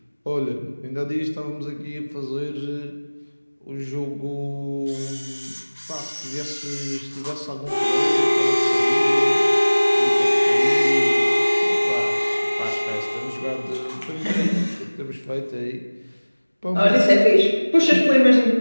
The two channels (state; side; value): inverted; both; correlation -1.00